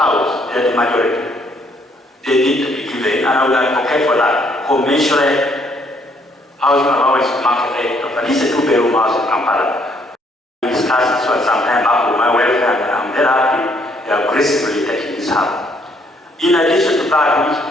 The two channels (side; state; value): both; normal; correlation 0.67